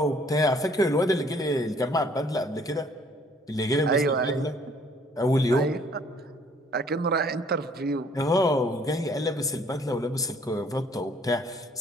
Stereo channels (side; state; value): both; normal; correlation 0.60